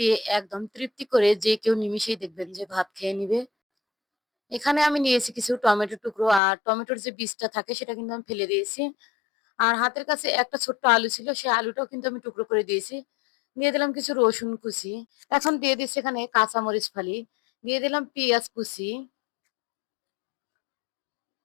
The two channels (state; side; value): drops out; right; at 6.4 s